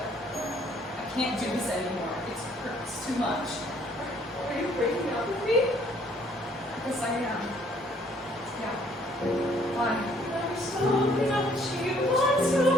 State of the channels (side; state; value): both; normal; correlation 0.62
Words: I can't do this anymore. It hurts too much. Are you breaking up with me? Yes, I am. Yeah. Why? I'm so much you want